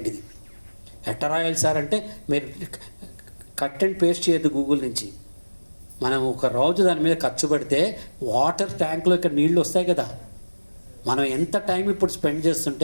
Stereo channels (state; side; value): inverted; both; correlation -1.00